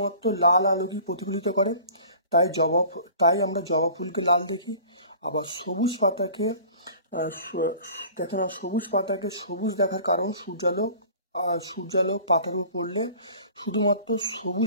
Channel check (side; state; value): both; inverted; correlation -0.46